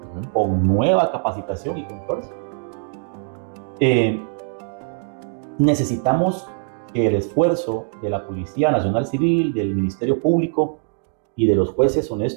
con nueva capacitación y controles, necesitamos que el esfuerzo de la Policía Nacional Civil, del Ministerio Público y de los jueces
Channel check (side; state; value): left; silent; 59 dB below the other